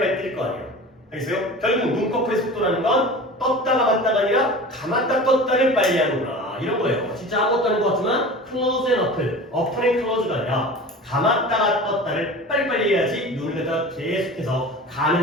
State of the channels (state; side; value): normal; both; correlation 0.36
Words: 뜰 거 아니에요. 알겠어요? 결국 눈꺼풀의 속도라는 건 떴다 감았다가 아니라 감았다 떴다를 빨리 하는구나. 이런 거예요. 진짜 아무것도 아닌 것 같지만 close and open, open and close가 아니라 감았다가 떴다를 빨리빨리 해야지 눈을 갖다가 계속해서